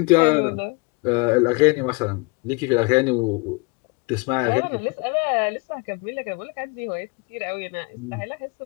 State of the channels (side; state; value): right; quieter; 29.5 dB